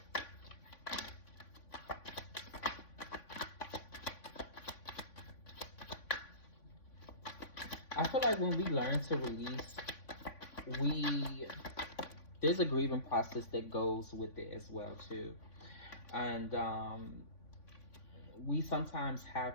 I feel like when we learn to release, we there's a grieving process that goes with it as well too, and we sometimes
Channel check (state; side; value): late; right; 3.5 ms